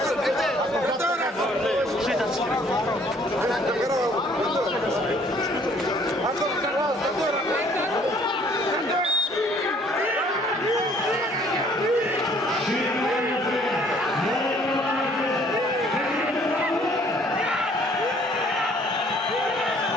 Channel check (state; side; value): normal; both; correlation 0.60